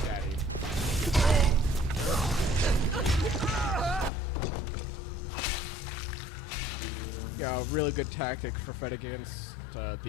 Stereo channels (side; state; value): right; drops out; at 4.1 s